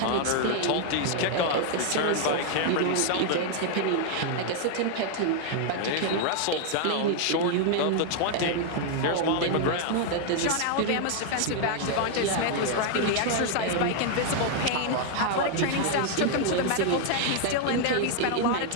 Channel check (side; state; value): both; different; correlation 0.00